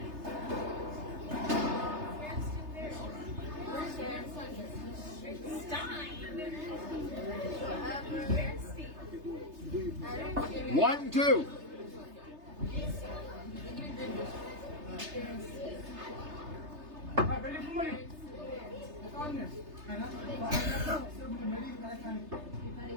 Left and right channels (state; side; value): late; left; 3.3 ms